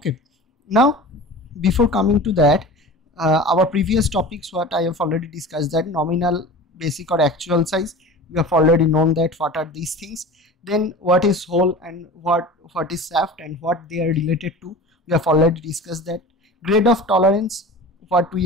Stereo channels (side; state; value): both; normal; correlation 0.36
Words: now before coming to that, our previous topics what I have already discussed, that nominal, basic or actual size, we have already known that what are these things. Then what is hole and what is shaft and what they are related to, we have already discussed that. Grade of tolerance, what